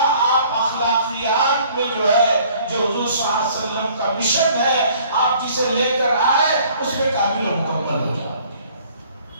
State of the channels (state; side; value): inverted; both; correlation -0.56